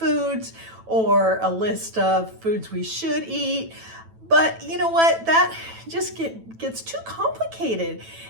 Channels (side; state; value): left; late; 9.1 ms